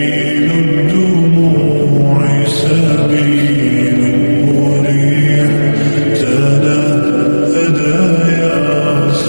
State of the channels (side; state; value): both; inverted; correlation -1.00